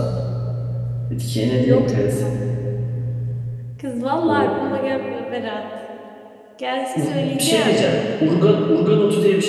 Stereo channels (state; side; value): identical; both; correlation 1.00